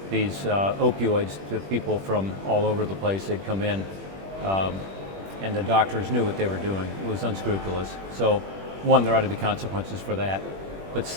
these opioids to people from all over the place. They'd come in, and the doctors knew what they were doing. It was unscrupulous. So one, there ought to be consequences for that. But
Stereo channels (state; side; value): late; left; 21 ms